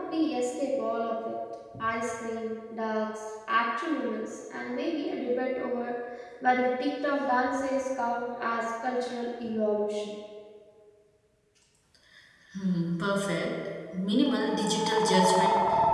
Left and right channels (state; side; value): identical; both; correlation 1.00